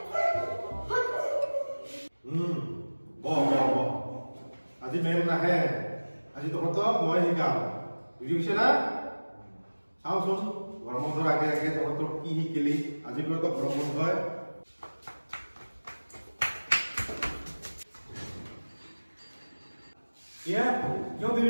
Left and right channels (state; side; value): inverted; both; correlation -1.00